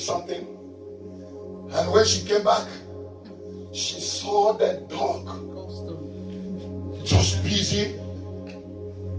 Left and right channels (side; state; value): both; identical; correlation 1.00